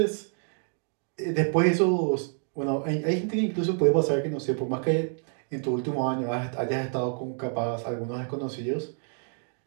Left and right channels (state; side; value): silent; left; 56 dB below the other